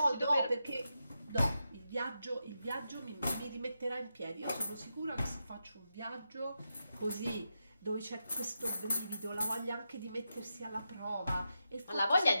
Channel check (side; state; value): both; inverted; correlation -0.87